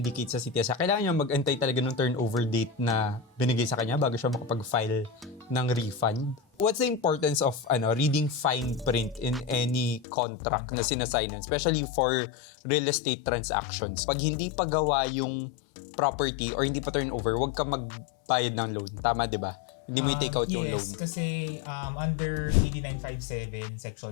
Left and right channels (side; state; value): right; drops out; at 10.1 s